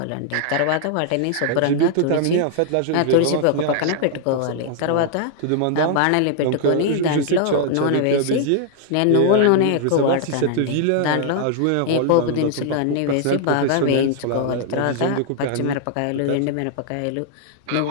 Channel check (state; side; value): different; both; correlation 0.00